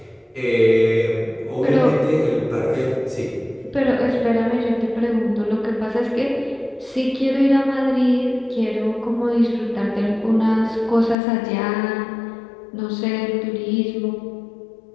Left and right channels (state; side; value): drops out; right; at 11.2 s